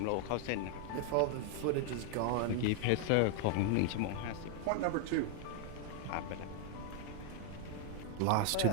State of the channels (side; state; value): both; different; correlation 0.00